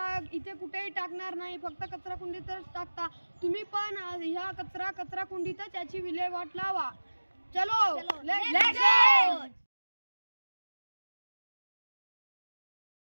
इथे कुठेही टाकणार नाही, फक्त कचरा कुंडीतच टाकता. तुम्ही पण ह्या कचरा कुंडीतच याची विल्हेवाट लावा. चलो लेट्स गो.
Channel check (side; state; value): both; inverted; correlation -1.00